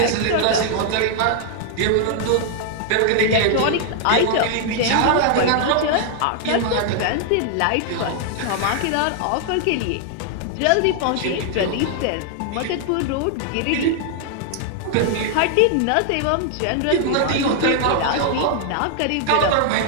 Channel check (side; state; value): both; different; correlation 0.00